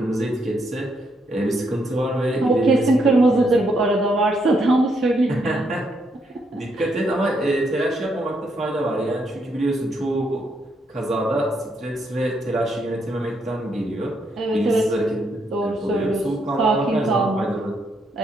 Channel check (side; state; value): both; normal; correlation 0.76